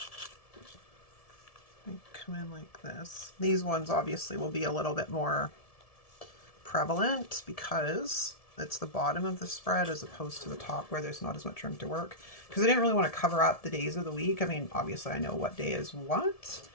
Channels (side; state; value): right; late; 1.7 ms